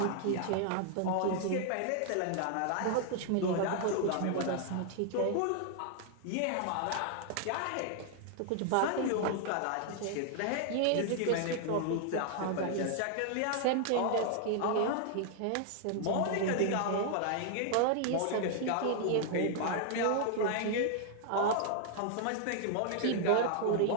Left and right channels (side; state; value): both; different; correlation 0.00